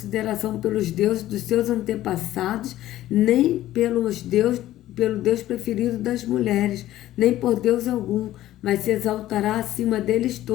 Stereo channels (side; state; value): right; quieter; 14.2 dB